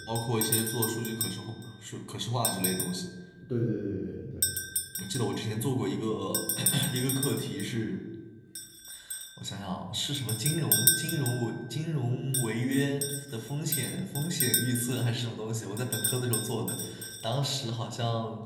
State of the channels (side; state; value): both; identical; correlation 1.00